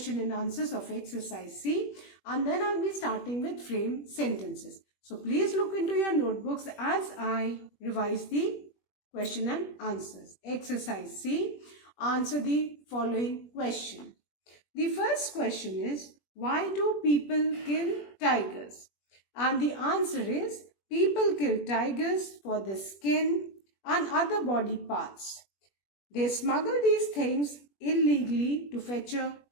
and answers of exercise C, and then I'll be starting with frame sentences. So please look into your notebooks as I revise the question and answers. Exercise C, answer the following question. The first question is, why do people kill tigers? And the answer is, people kill tigers for the skin and other body parts. They smuggle these things illegally to fetch a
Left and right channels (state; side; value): late; right; 21 ms